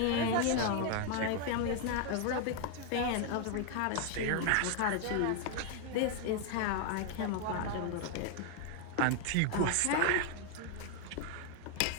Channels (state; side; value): different; both; correlation 0.00